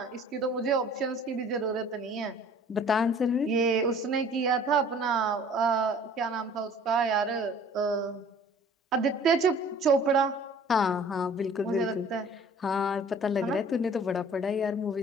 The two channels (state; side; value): normal; both; correlation 0.50